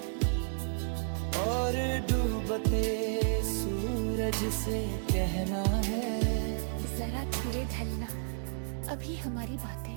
और डूबते सूरज से कहना है जरा धीरे ढलना, अभी हमारी बातें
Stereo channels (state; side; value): silent; left; digital silence